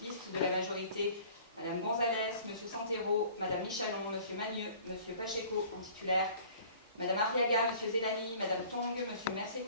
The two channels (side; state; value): both; inverted; correlation -0.49